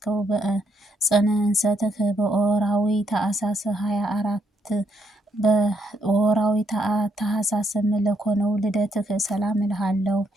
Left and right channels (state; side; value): normal; both; correlation 0.74